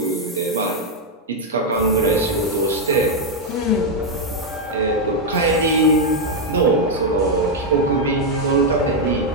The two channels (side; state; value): both; normal; correlation 0.01